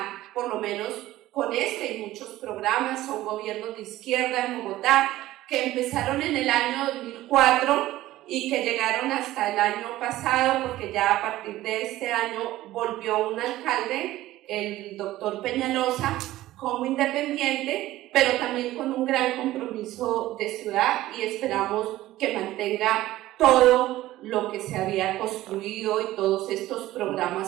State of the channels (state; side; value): quieter; left; 15.7 dB